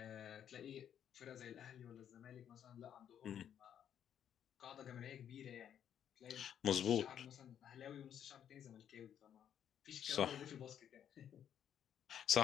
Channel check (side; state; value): right; quieter; 9.4 dB